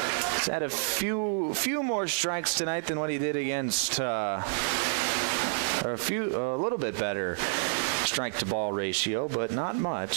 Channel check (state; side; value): silent; left; digital silence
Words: had a few more strikes tonight than what he did against a little bit better strike-to-ball ratio, but not